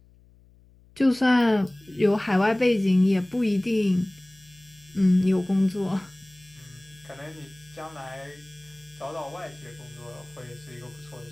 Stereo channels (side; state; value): left; noise; hum, 28 dB below the sound